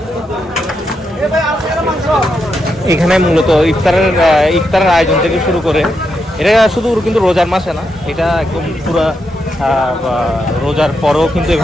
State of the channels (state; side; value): normal; both; correlation 0.83